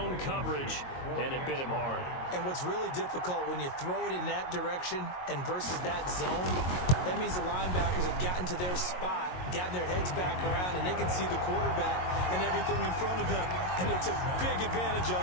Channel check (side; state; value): right; late; 22 ms